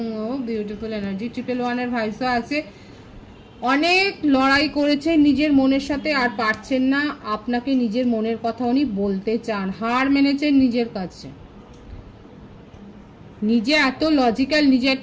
বিউটিফুল এনার্জি 111-এর ভাইসও আছে। অনেক লড়াই করেছেন নিজের মনের সাথে, আর পারছেন না, আপনাকে নিজের মনের কথা উনি বলতে চান, হার মেনেছেন নিজের কাছে। নিজে এত লজিক্যাল, নিজে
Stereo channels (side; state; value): both; identical; correlation 1.00